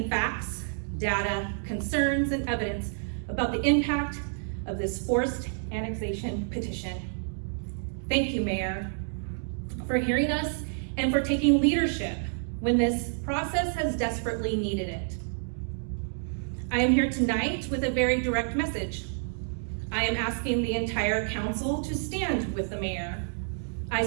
facts, data, concerns, and evidence about the impact of this forced annexation petition. Thank you, Mayor, for hearing us and for taking leadership when this process has desperately needed it. I am here tonight with a very direct message. I am asking the entire council to stand with the mayor.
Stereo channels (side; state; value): left; silent; digital silence